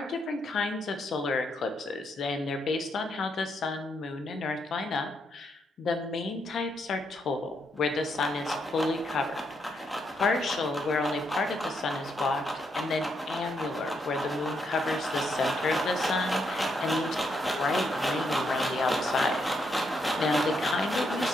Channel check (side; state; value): both; normal; correlation 0.77